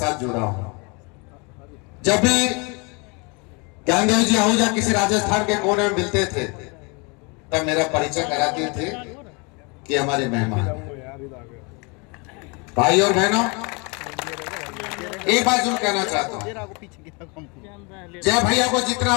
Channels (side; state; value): right; quieter; 30.8 dB